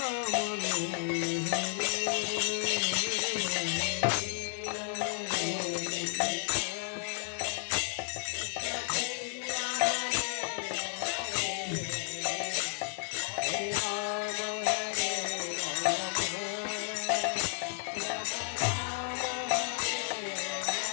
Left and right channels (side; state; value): right; silent; digital silence